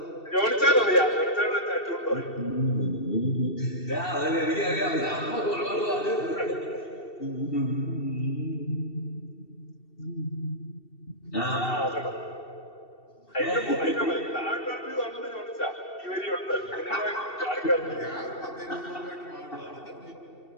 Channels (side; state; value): right; late; 2.7 ms